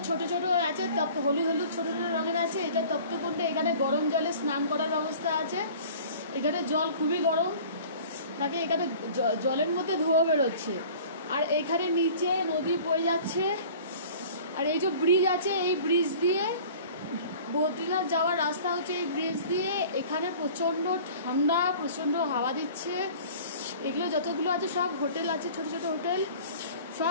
ছোট ছোট আছে, হলুদ হলুদ ছোট ছোট রঙের আছে। এটা তপ্তকুণ্ডে, এখানে গরম জলে স্নান করার ব্যবস্থা আছে। এখানে জল খুবই গরম থাকে, এখানে জলের মধ্যে ধোঁয়া বেরোচ্ছে। আর এখানে নিচে নদী বয়ে যাচ্ছে। আর এই যে ব্রিজ আছে, এই ব্রিজ দিয়ে বদ্রীনাথ যাওয়ার রাস্তা হচ্ছে এই ব্রিজ দিয়ে। এখানে প্রচণ্ড ঠান্ডা, প্রচণ্ড হাওয়া দিচ্ছে। এগুলো যতগুলো আছে সব হোটেল আছে, ছোট ছোট হোটেল,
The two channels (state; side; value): inverted; both; correlation -0.45